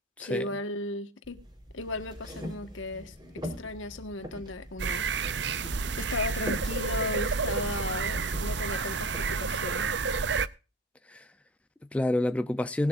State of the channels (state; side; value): normal; both; correlation 0.34